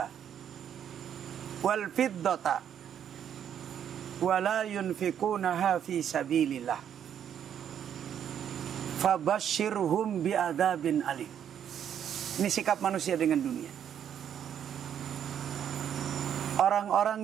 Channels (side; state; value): left; quieter; 9.2 dB